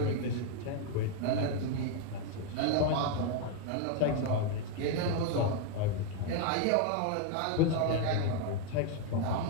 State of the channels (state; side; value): different; both; correlation 0.00